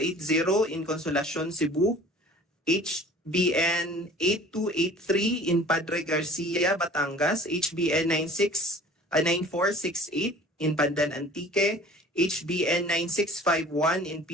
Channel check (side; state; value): both; normal; correlation 0.46